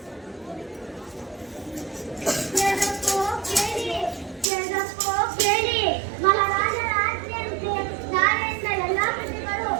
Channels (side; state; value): left; drops out; at 4.5 s